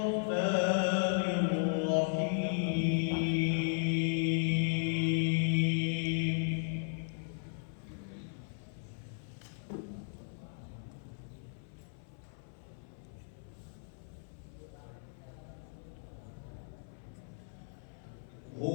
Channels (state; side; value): silent; right; 54 dB below the other